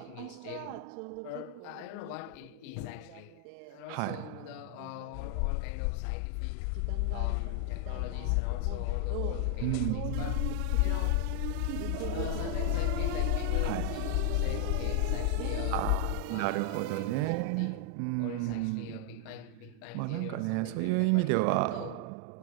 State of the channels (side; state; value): both; different; correlation 0.00